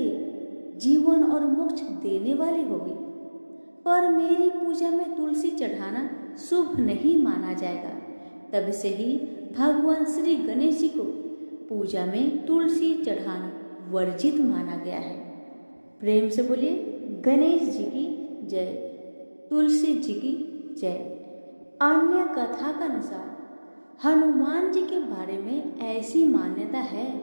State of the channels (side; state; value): both; inverted; correlation -1.00